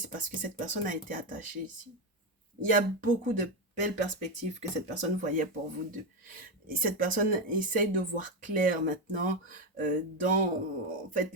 parce que cette personne a été attachée ici. Il y a beaucoup de belles perspectives que cette personne voyait pour vous deux. Et cette personne essaye de voir clair maintenant dans en fait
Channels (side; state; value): both; normal; correlation 0.10